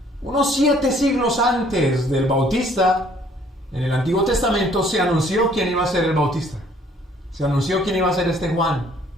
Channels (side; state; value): both; normal; correlation 0.60